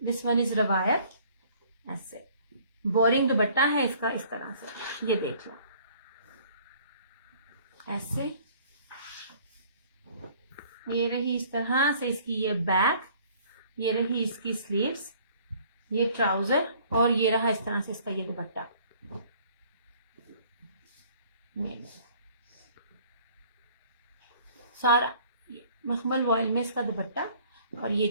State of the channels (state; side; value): inverted; both; correlation -0.56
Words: दिस वन इज रवायत, ऐसे बोरिंग दुपट्टा है इसका इस तरह से, ये देख लो ऐसे। ये रही इस तरह से इसकी ये बैक, ये रही इसकी स्लीव्स, ये ट्राउजर, और ये रहा इस तरह से इसका ये दुपट्टा। सारा मखमल वॉयल में इसका दुपट्टा, और ये